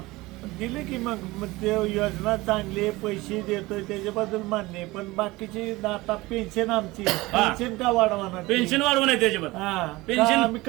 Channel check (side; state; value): left; quieter; 20.6 dB